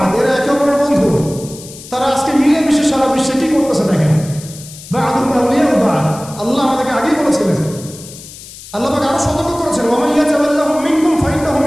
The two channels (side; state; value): left; noise; hiss, 16 dB below the sound